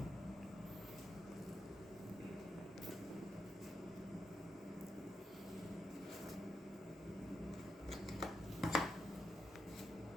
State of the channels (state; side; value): normal; both; correlation 0.84